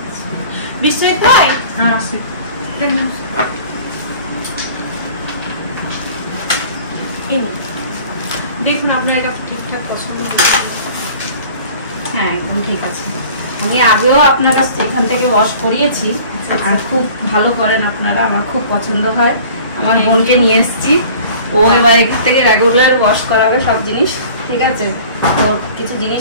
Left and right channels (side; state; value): both; inverted; correlation -0.46